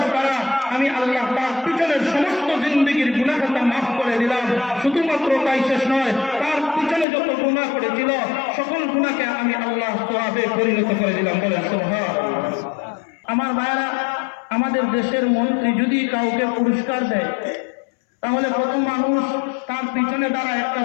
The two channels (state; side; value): drops out; right; at 7.1 s